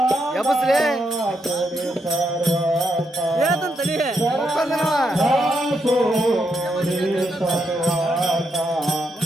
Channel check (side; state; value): both; normal; correlation 0.80